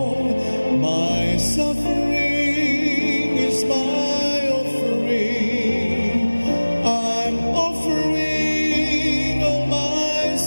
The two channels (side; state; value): both; inverted; correlation -1.00